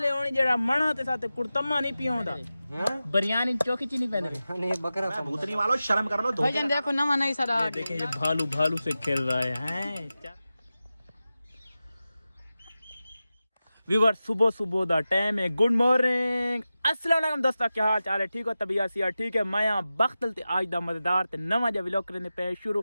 होनी जेड़ा मणा ते साथे कुड़तम्मा नहीं पियोंदा बिरयानी चौकी ची नहीं पहनदे नहीं बकरा भूतनी वालों शर्म कर लो। भाईजान देखो नवा नहीं सारा देखिए ये भालू भालू से खेल रहा है व्यूअर सुबह सुबह दा टाइम है। गुड मॉर्निंग अस्सलाम वालेकुम दोस्तों, क्या हाल चाल है? ठीक हो? तबीयत सी ठीक है? मैं यहाँ बख्तल ते आज दा मजेदार ते नवा जा व्लॉग करने पे शुरू।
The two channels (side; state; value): both; inverted; correlation -0.94